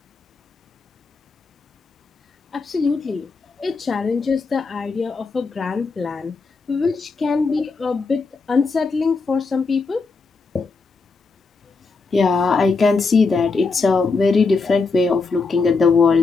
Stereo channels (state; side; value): quieter; right; 4.3 dB